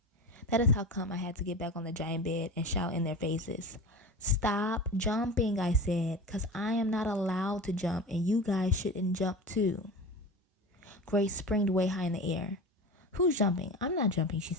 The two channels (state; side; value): normal; both; correlation 0.30